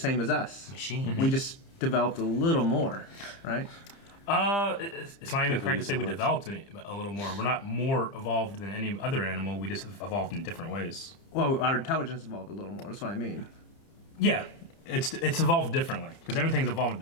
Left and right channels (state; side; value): late; right; 30 ms